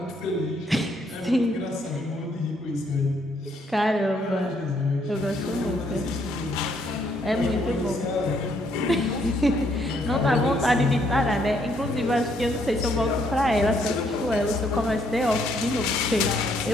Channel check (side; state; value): both; normal; correlation 0.71